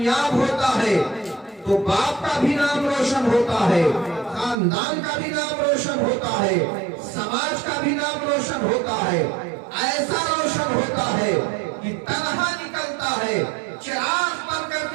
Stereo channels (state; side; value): drops out; left; at 4.5 s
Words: होता है तो बाप का भी नाम रोशन होता है, खानदान का भी नाम रोशन होता है, समाज का भी नाम रोशन होता है। ऐसा रोशन होता है कि तनहा निकलता है, चिराग बन